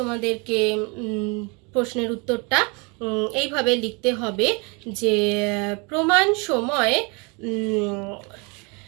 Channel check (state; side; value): quieter; left; 30.5 dB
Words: প্রশ্নের উত্তরটা এইভাবে লিখতে হবে যে প্রমাণ সময়